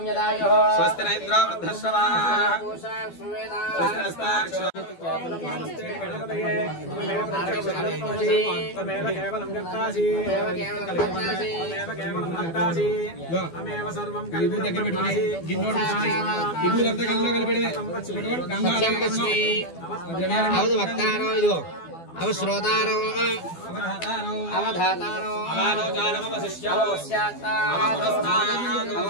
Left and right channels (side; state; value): right; late; 12 ms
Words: స్వస్తి నైద్రా వృద్ధశ్రవా వక్తారో ఇదిగో అవ శ్రోతారో అవధాతారో